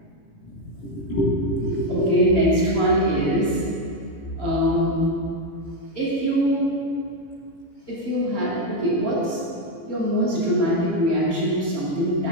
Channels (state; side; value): late; right; 18 ms